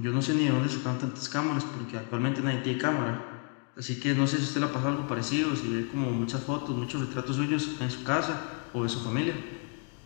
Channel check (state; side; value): quieter; right; 39.9 dB